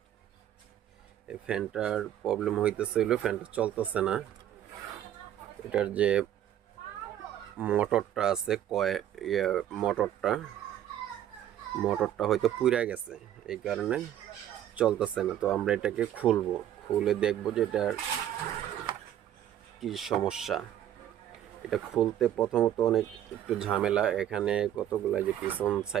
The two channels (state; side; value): quieter; left; 11.3 dB